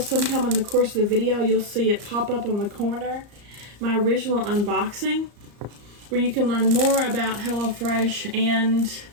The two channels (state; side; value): late; left; 34 ms